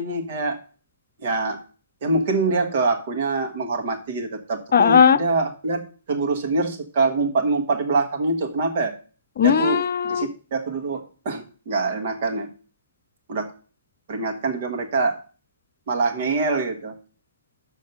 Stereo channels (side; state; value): both; inverted; correlation -0.55